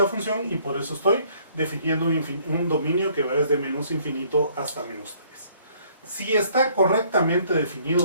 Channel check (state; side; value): inverted; both; correlation -0.62